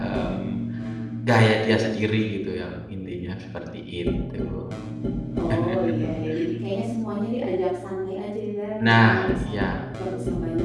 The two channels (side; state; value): both; identical; correlation 1.00